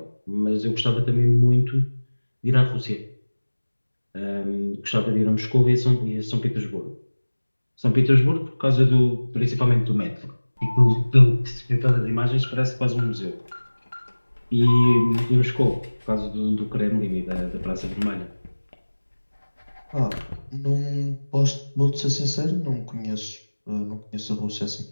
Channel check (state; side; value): inverted; both; correlation -1.00